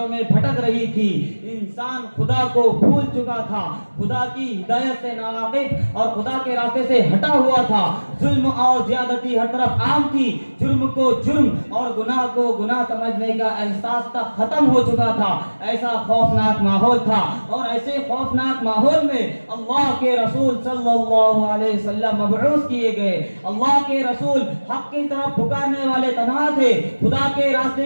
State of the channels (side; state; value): both; inverted; correlation -1.00